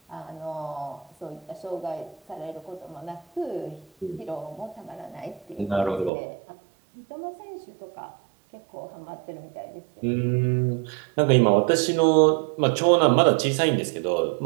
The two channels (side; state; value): left; drops out; at 6.1 s